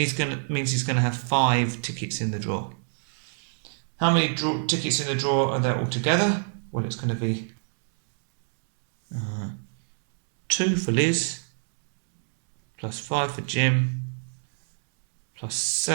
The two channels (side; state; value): left; silent; 61 dB below the other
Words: he's going to have 5 tickets in the draw. How many tickets in the draw are there altogether? Well, it's going to be 2 for Liz, plus 5 for Jim, plus